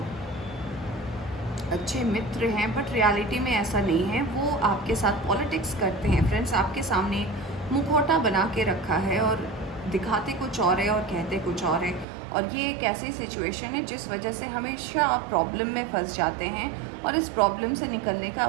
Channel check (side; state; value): left; drops out; at 12.1 s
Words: अच्छे मित्र हैं, बट रियलिटी में ऐसा नहीं है। वो आपके साथ पॉलिटिक्स करते हैं फ्रेंड्स। आपके सामने मुखौटा बना के रखा है और दिखाते कुछ और है और कहते कुछ और है। और ये एक ऐसी सिचुएशन है जिस वजह से हमेशा आप प्रॉब्लम में फंस जाते हैं और इस प्रॉब्लम से निकलने का